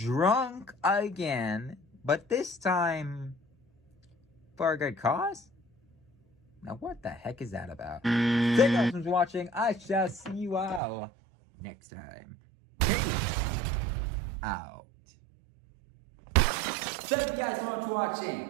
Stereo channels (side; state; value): left; drops out; at 10.8 s